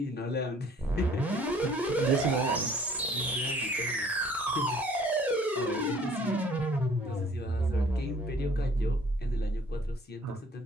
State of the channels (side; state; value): both; normal; correlation 0.56